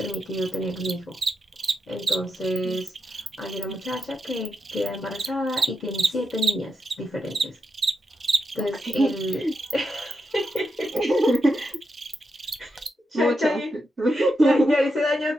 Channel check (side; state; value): both; normal; correlation 0.85